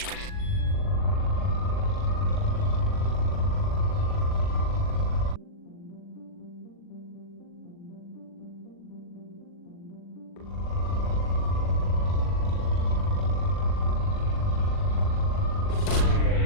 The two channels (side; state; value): right; late; 40 ms